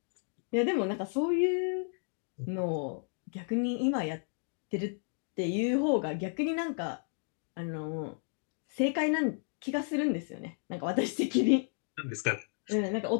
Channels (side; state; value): right; silent; 56 dB below the other